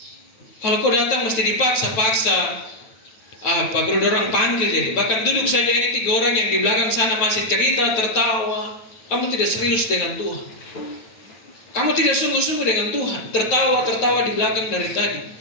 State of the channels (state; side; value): late; right; 9.3 ms